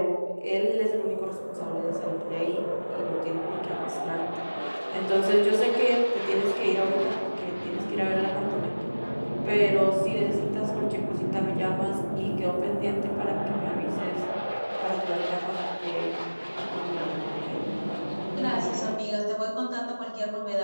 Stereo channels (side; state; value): both; inverted; correlation -1.00